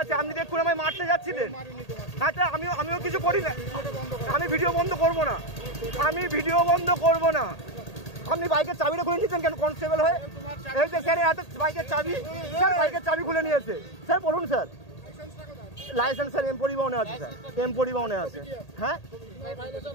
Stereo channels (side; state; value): right; late; 1.8 ms